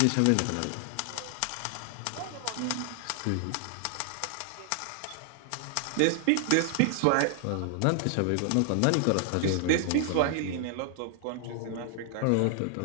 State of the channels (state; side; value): different; both; correlation 0.00